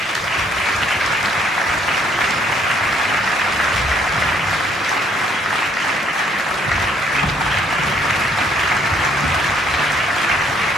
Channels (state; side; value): normal; both; correlation 0.65